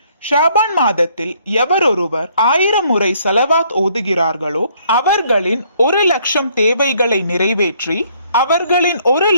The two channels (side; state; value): both; inverted; correlation -0.65